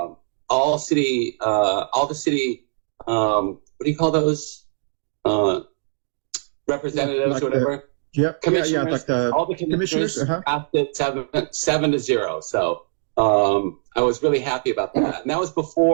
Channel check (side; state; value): left; silent; digital silence